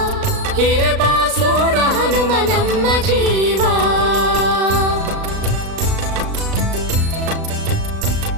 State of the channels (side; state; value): left; late; 36 ms